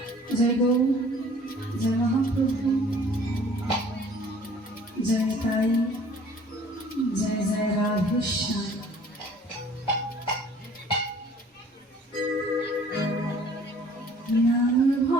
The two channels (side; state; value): both; normal; correlation 0.53